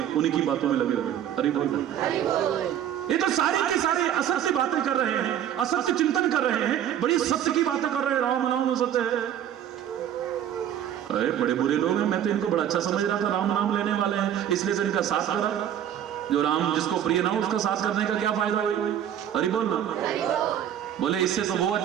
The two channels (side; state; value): left; quieter; 10.3 dB